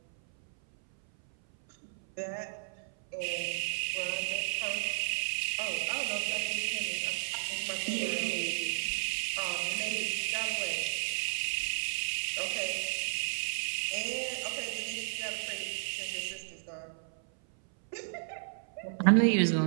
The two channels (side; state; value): left; silent; 56 dB below the other